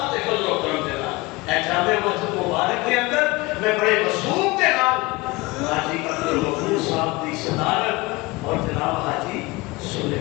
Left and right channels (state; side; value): quieter; right; 22.8 dB